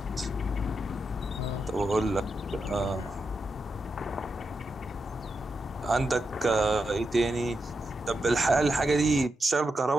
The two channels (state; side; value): normal; both; correlation 0.86